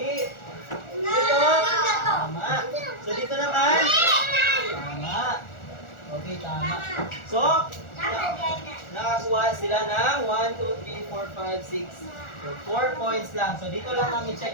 Dito. Tama. So, dito naman. Tama. Okay, tama. So, nakakuha sila ng 1, 2, 3, 4, 5, 6. So, 4 points lang. So, dito lang namin check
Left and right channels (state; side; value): late; right; 1.4 ms